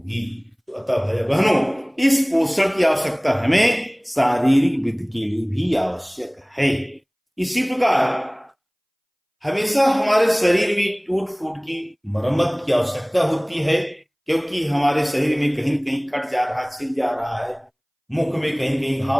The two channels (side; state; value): both; identical; correlation 1.00